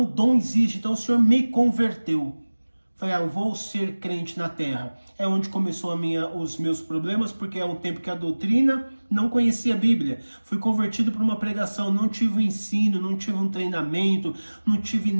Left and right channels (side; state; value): both; inverted; correlation -1.00